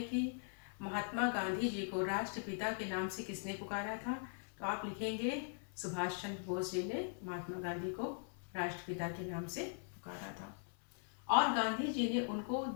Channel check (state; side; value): silent; right; 51 dB below the other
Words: कि महात्मा गांधी जी को राष्ट्रपिता के नाम से किसने पुकारा था, तो आप लिखेंगे सुभाष चंद्र बोस जी ने महात्मा गांधी को राष्ट्रपिता के नाम से पुकारा था। और गांधी जी ने उनको